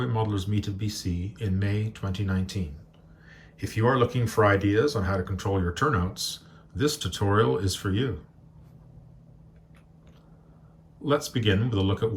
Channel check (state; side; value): identical; both; correlation 1.00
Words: Modelers Meet of BC in May 2019. If you are looking for ideas on how to control your turnouts, this tutorial is for you. Let's begin with a look at